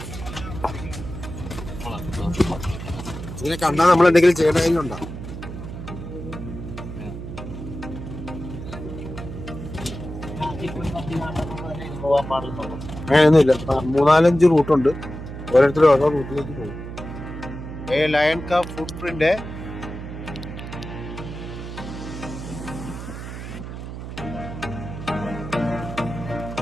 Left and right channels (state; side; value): noise; right; hum, 9 dB below the sound